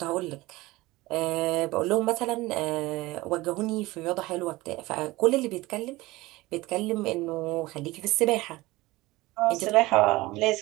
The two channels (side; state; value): left; quieter; 19.8 dB